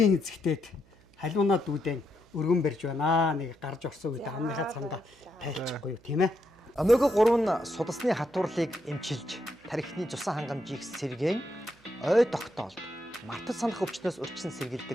эзэгтээд халуунаа дүүдэн өргөн барьж байна. Нэг гарч орсон үед амныхаа цамдаа тайлчихгүй юу тийм ээ. Омега 3 нь судасны хатуурлыг эмчилж, тархины цусан хангамжийг сэргээн, ой тогтоолд, мартаж санах өвчнөөс урьдчилан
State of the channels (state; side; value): noise; right; hum, 29 dB below the sound